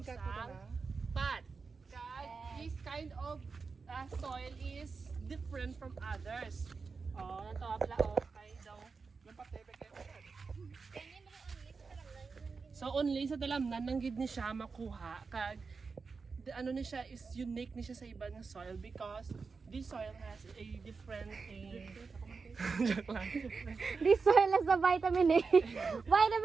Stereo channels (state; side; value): quieter; left; 4.8 dB